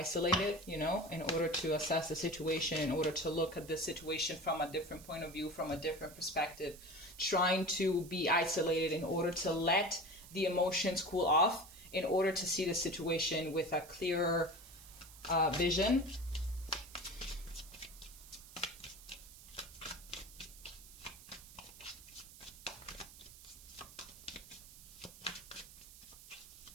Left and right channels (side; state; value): right; noise; hiss, 18 dB below the sound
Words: you know, in order to assess the situation, in order to look at the situation from a different point of view, from a different perspective, trying to be isolated in order to let the emotions cool off, in order to see the situation with a clearer vision.